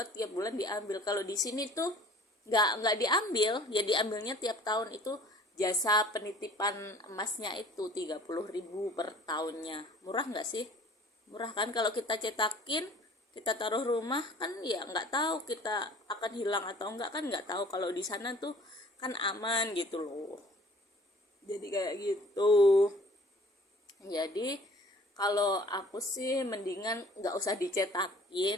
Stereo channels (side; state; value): both; normal; correlation 0.50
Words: tiap bulan diambil. Kalau di sini tuh nggak diambil, ya diambilnya tiap tahun. Itu jasa penitipan emasnya itu 30.000 per tahunnya. Murah nggak sih? Murah kan? Kalau kita cetakin, kita taruh rumah kan ya nggak tahu kita akan hilang atau enggak, kan nggak tahu. Kalau di sana tuh kan aman gitu loh, jadi kayak gitu. Jadi kalau aku sih mendingan nggak usah